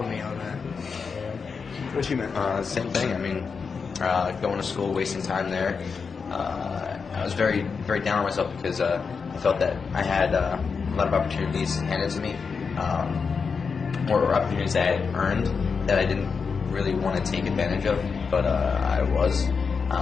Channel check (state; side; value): quieter; right; 5.4 dB